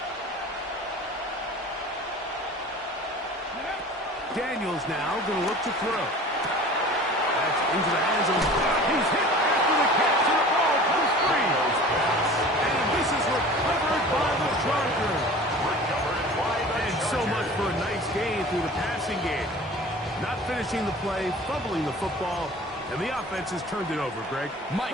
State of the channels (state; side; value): normal; both; correlation 0.42